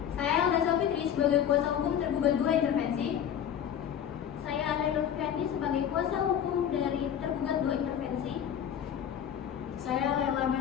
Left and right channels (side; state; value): right; quieter; 9.2 dB